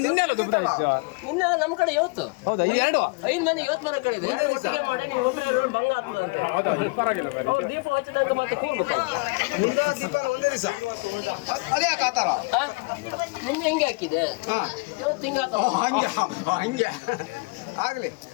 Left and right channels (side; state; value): right; quieter; 30.1 dB